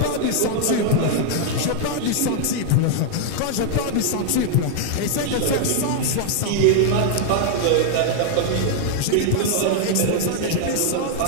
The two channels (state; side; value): different; both; correlation 0.00